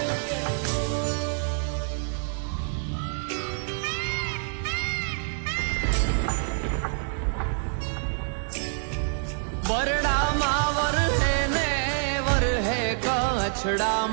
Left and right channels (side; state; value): left; silent; 57 dB below the other